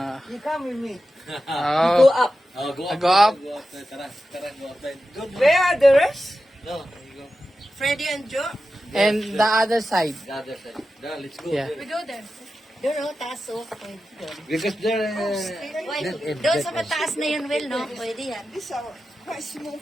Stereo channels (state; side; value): normal; both; correlation 0.92